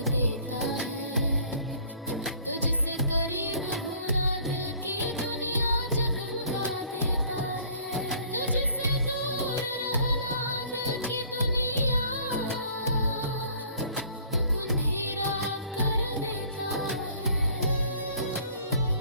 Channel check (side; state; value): both; inverted; correlation -0.54